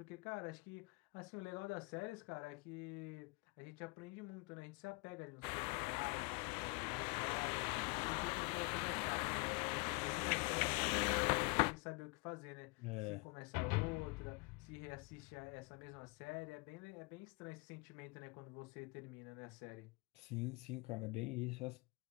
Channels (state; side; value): quieter; right; 28.5 dB